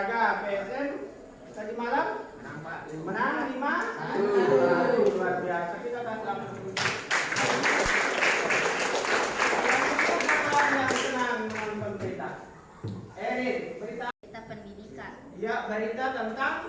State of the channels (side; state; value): both; identical; correlation 1.00